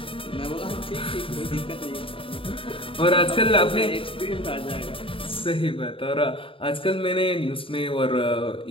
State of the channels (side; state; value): right; late; 0.26 ms